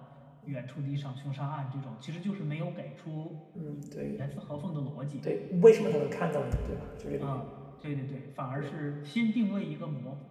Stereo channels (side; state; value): both; identical; correlation 1.00